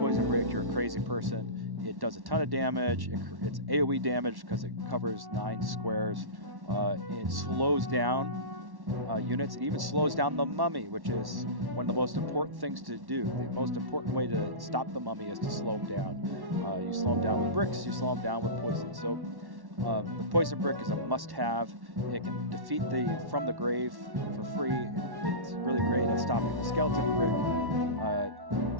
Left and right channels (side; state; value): left; late; 1.1 ms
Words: brick, you're a crazy person. It does a ton of damage. It's AoE damage because it covers 9 squares. It slows down units. It even slows down the mummy, which is one of the most important things to do. The most important way to stop the mummy is to slow him down. You slow him down with bricks. You slow him down with poison. So the poison brick is a must-have. It can defeat the from the grave for free. It's really great at stopping the skeleton brick.